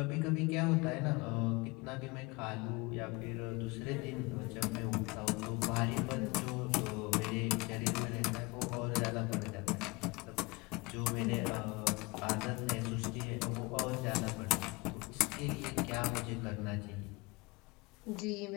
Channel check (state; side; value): quieter; right; 25.6 dB